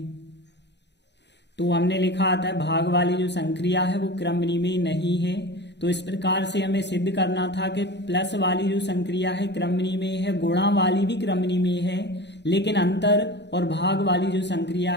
तो हमने लिखा आता है भाग वाली जो संक्रिया है वो क्रमनी में नहीं है। तो इस प्रकार से हमें सिद्ध करना था कि प्लस वाली जो संक्रिया है क्रमनी में है, गुणा वाली भी क्रमनी में है, लेकिन अंतर और भाग वाली जो संक्रिया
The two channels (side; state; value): right; late; 0.50 ms